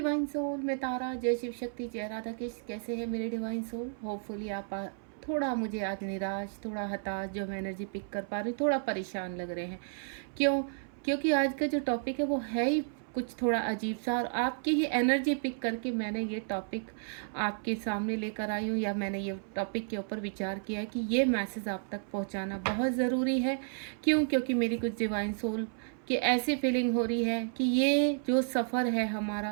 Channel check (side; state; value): left; silent; 56 dB below the other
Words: सोल, मैं तारा। जय शिव शक्ति, जय राधा कृष्ण। कैसे हैं मेरे डिवाइन सोल? होपफुली आप थोड़ा मुझे आज निराश, थोड़ा हताश जो मैं एनर्जी पिक कर पा रही हूँ, थोड़ा परेशान लग रहे हैं। क्यों? क्योंकि आज का जो टॉपिक है वो है ही कुछ थोड़ा अजीब सा, और आपकी ही एनर्जी पिक करके मैंने ये टॉपिक आपके सामने लेकर आई हूँ, या मैंने ये टॉपिक के ऊपर विचार किया है कि ये मैसेज आप तक पहुँचाना बहुत ज़रूरी है। क्यों? क्योंकि मेरी कुछ डिवाइन सोल की ऐसी फीलिंग हो रही है कि ये जो सफ़र है